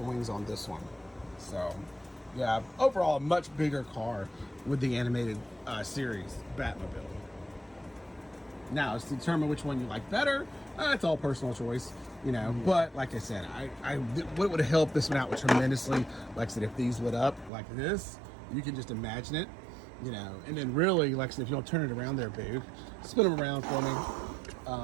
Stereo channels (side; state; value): left; drops out; at 17.5 s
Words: wings on this one. So, yeah, overall a much bigger car with the animated series Batmobile. Now, to determine which one you like better, it's all personal choice, you know. But like I said, what would have helped this one out tremendously, like I said, if these lit up like this, you can just imagine it, you know. And then really, like I said, if you don't turn it around there, Boog, spin them around for